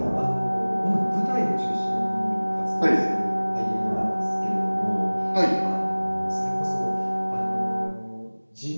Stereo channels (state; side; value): inverted; both; correlation -1.00